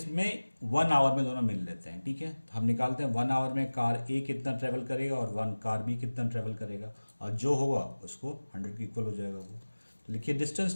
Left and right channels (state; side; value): inverted; both; correlation -1.00